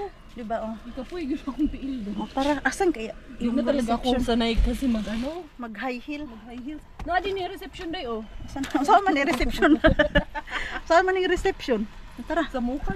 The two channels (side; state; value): both; identical; correlation 1.00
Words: Diba, oh. Ikaw po, yung akong tiil doon. Oh, tara, asan kaya? Hindi na talaga akong sanay kasi mag-ano? Mag-high heel. Mag-high heels. Na din yung reception day, oh. Saan man yung reception? Saan man yung reception? Tara. Sa mukha.